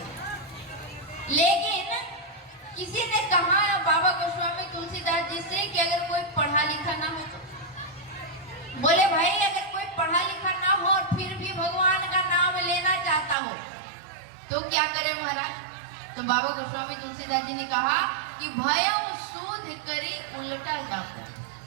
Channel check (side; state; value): left; drops out; at 13.4 s